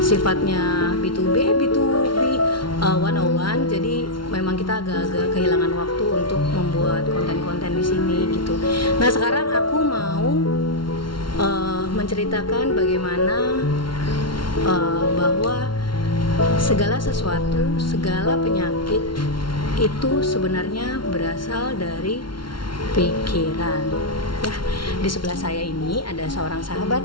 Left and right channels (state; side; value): late; right; 0.73 ms